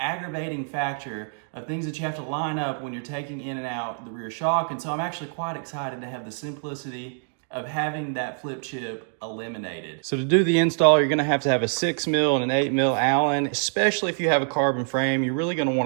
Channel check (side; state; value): left; silent; 61 dB below the other